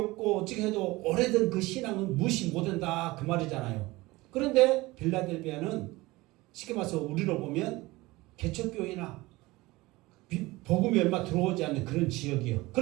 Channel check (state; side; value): quieter; left; 20.6 dB